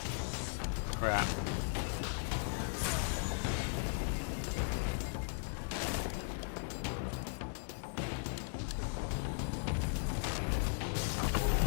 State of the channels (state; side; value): silent; right; digital silence